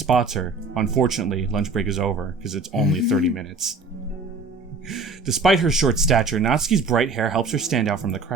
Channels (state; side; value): quieter; left; 3.8 dB